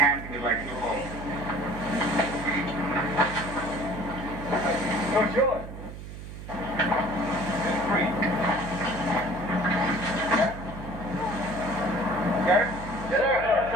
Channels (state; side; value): noise; right; hum, 11 dB below the sound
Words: he would like to hold. No, it's yours. Three. Got it?